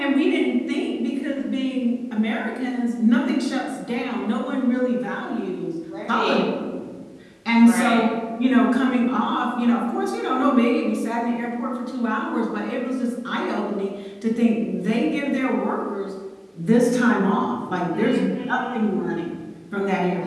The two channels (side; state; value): both; identical; correlation 1.00